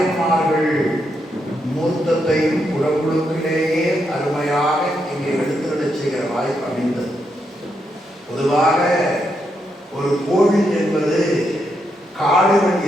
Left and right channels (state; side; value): normal; both; correlation 0.81